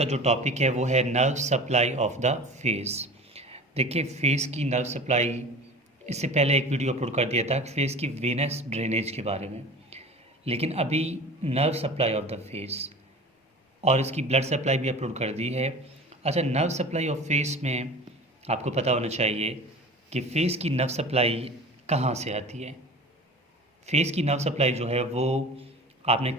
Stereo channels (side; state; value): both; normal; correlation 0.37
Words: जो टॉपिक है वो है nerve supply of the face. देखिए, फेस की नर्व सप्लाई, इससे पहले एक वीडियो अपलोड कर दिया था फेस की वेनस ड्रेनेज के बारे में। लेकिन अभी nerve supply of the face और इसकी ब्लड सप्लाई भी अपलोड कर दी है। अच्छा, नर्व सप्लाई ऑफ फेस में आपको पता होना चाहिए कि फेस की नर्व सप्लाई कहाँ से आती है। फेस की नर्व सप्लाई जो है वो, आपने